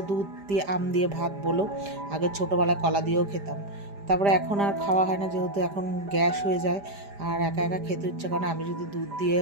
দুধ দিয়ে আম দিয়ে ভাত বলো। আগে ছোটোবেলায় কলা দিয়েও খেতাম, তারপরে এখন আর খাওয়া হয় না, যেহেতু এখন গ্যাস হয়ে যায় আর একা একা খেতে ইচ্ছে করে না। আমি যদি দুধ দিয়ে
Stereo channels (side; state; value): left; late; 5.0 ms